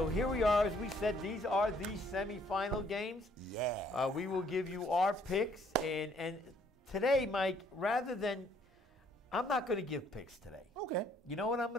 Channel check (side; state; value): both; normal; correlation 0.64